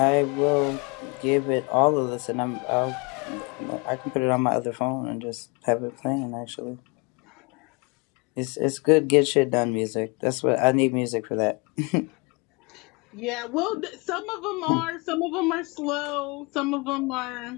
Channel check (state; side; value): quieter; right; 30.0 dB